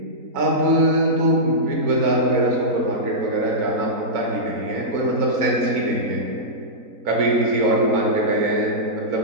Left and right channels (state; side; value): late; left; 3.9 ms